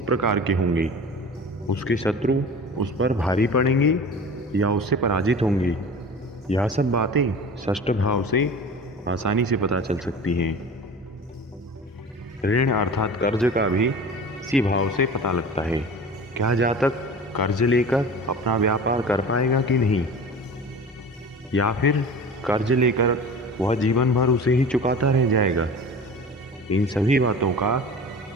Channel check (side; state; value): both; normal; correlation 0.37